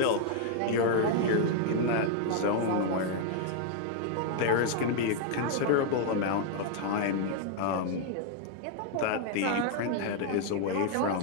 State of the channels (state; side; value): different; both; correlation 0.00